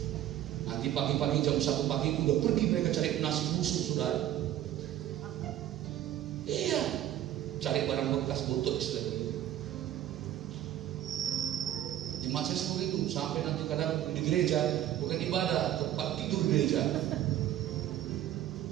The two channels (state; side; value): quieter; left; 12.5 dB